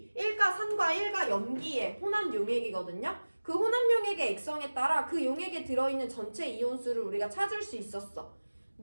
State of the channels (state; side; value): inverted; both; correlation -1.00